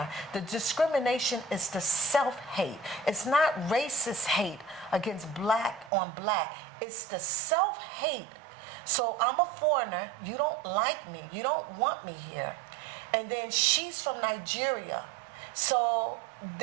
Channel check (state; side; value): drops out; left; at 5.9 s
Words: The discrimination is the self-hate. It's not racist hate against black on black. It's the self-hate. So I'm a foreigner, you don't like me, you don't want me here. And then she's from Nigeria. So